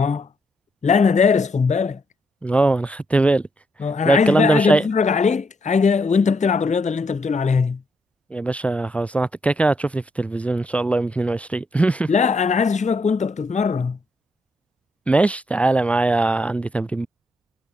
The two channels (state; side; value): normal; both; correlation 0.76